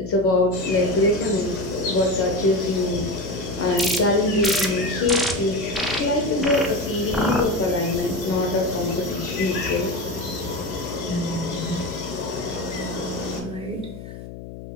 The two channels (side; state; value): left; noise; hum, 12 dB below the sound